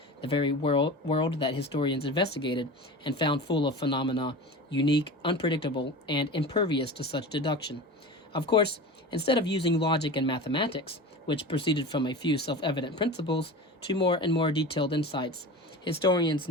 the very world that historians investigated and found full of phenomena unique, unpredictable, and impervious to such deduction. Of course, instead of using logic and mathematics, which proceeded from a few self-evident principles, to more and more detailed insights, historians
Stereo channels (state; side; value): normal; both; correlation 0.32